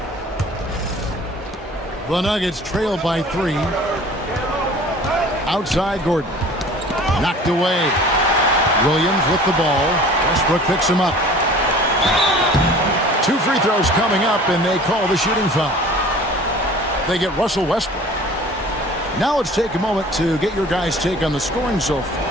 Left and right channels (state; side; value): normal; both; correlation 0.45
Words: The Nuggets trail by 3. Outside Gordon. Knocked away. Williams with the ball. Westbrook picks him up. 2 free throws coming up, and they call the shooting foul. They get Russell Westbrook. Now let's take a moment to get your guys' take on the scoring so